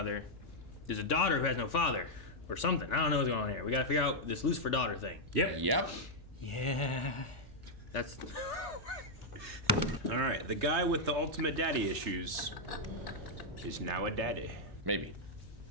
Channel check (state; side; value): normal; both; correlation -0.03